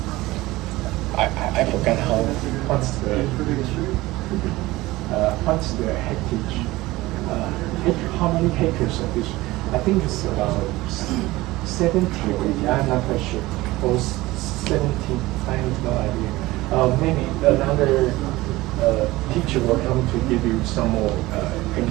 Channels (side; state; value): left; quieter; 19.0 dB